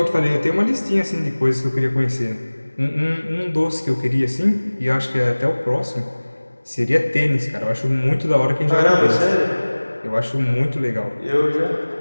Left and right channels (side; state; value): both; inverted; correlation -1.00